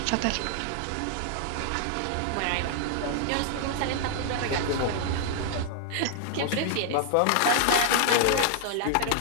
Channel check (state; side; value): different; both; correlation 0.00